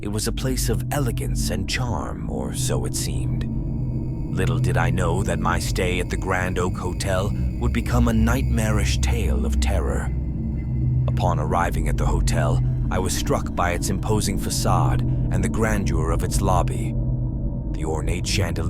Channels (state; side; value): identical; both; correlation 1.00